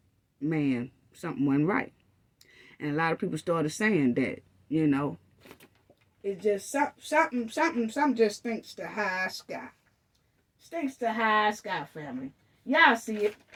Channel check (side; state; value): both; identical; correlation 1.00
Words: man, something wasn't right. And a lot of people started saying that, it's just something just stinks to high sky. Stinks to high sky, family. Y'all see it.